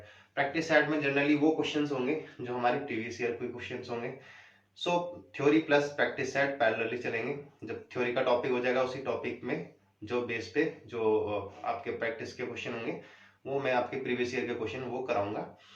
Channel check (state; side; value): identical; both; correlation 1.00